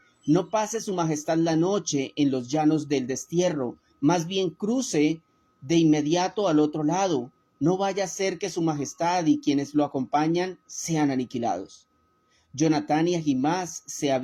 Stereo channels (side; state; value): both; identical; correlation 1.00